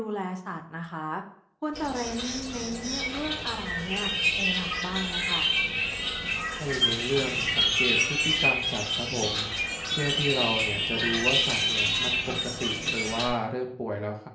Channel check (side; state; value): both; identical; correlation 1.00